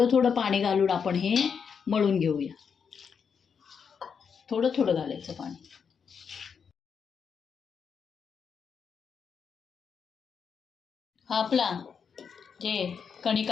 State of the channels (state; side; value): quieter; right; 6.5 dB